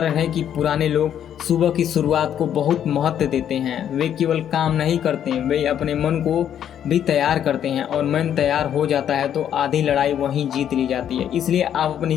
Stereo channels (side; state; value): right; quieter; 9.7 dB